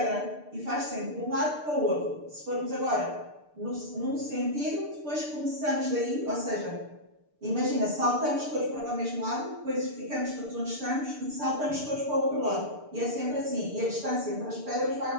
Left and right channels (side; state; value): left; late; 6.7 ms